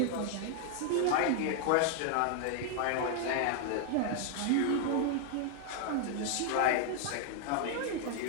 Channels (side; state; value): both; different; correlation 0.00